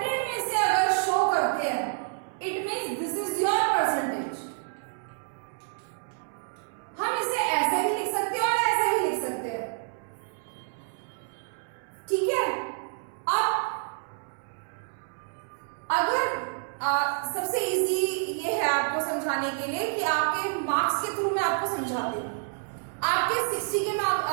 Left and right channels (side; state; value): left; silent; 59 dB below the other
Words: में से अगर शो करते हैं, it means this is your percentage. हम इसे ऐसे भी लिख सकते हैं और ऐसे भी लिख सकते हैं. ठीक है. अब अगर सबसे इजी ये है आपको समझाने के लिए कि आपके मार्क्स के थ्रू मैं आपको समझाती हूँ. आपके 60 के